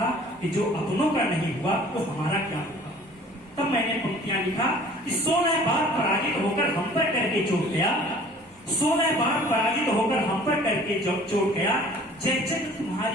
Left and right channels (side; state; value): both; normal; correlation 0.50